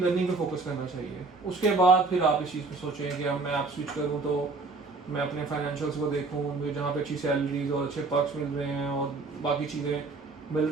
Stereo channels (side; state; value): left; quieter; 3.8 dB